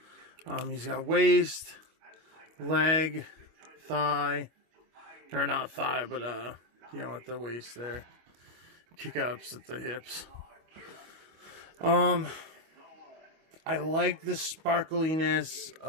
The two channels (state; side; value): late; left; 25 ms